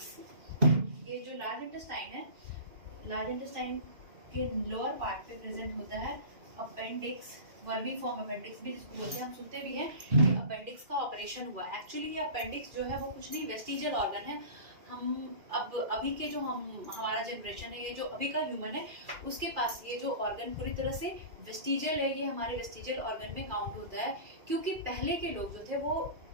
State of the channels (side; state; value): left; late; 2.4 ms